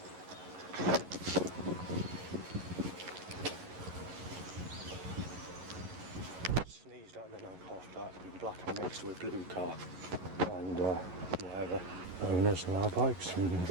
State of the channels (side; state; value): left; late; 11 ms